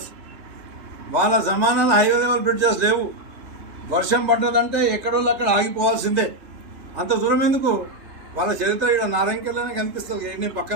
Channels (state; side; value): late; left; 3.2 ms